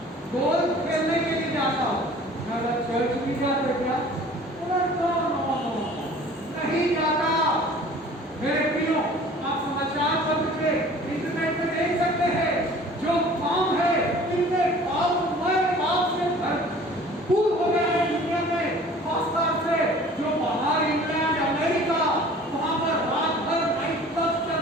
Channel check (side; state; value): both; normal; correlation 0.47